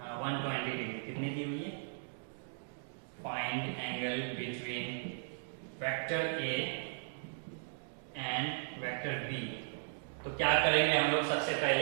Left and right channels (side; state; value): left; silent; digital silence